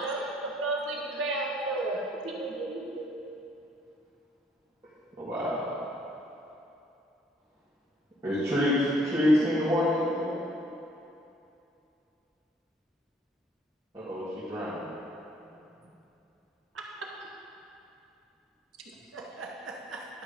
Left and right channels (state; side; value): normal; both; correlation 0.62